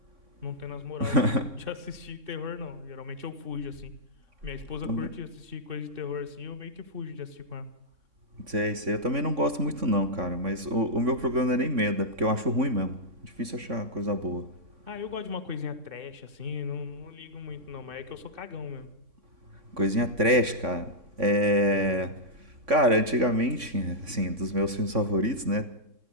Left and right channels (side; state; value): left; late; 3.5 ms